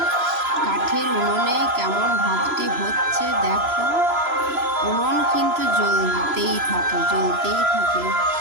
কাঠের উনুনে কেমন ভাতটি হচ্ছে দেখো। উনুন কিন্তু জ্বলতেই থাকে,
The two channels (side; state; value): left; late; 3.0 ms